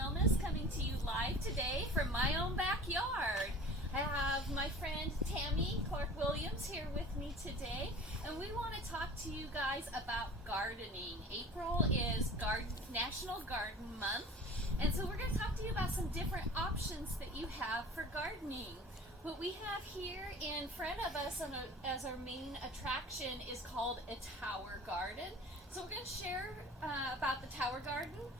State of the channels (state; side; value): normal; both; correlation 0.41